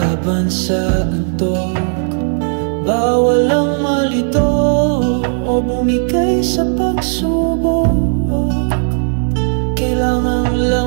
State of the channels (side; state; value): left; silent; digital silence